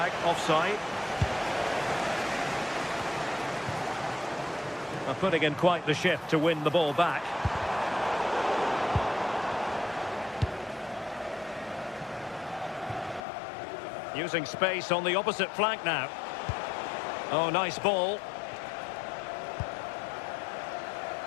Offside. Putting in quite the shift to win the ball back. Using space on the opposite flank now. Oh, nice ball.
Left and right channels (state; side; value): drops out; right; at 13.2 s